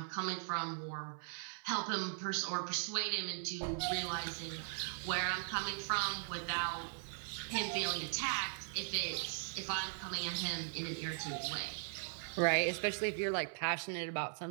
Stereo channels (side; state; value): left; silent; 52 dB below the other